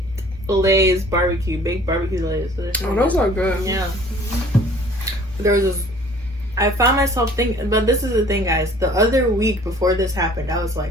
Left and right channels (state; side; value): normal; both; correlation 0.52